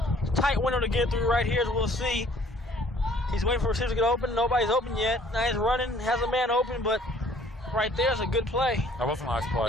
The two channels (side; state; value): both; normal; correlation 0.57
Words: tight window to get through right here, as we'll see. He's waiting for receivers to get open. Nobody's open yet. Now he's running, has a man open, but right there's a good play. That was a nice play.